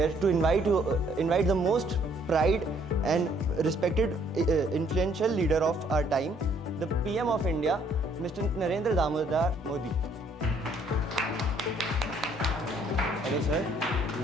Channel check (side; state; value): both; normal; correlation 0.64